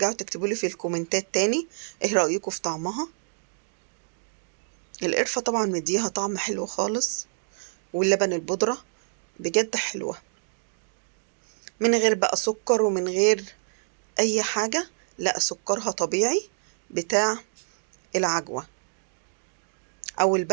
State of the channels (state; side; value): silent; left; digital silence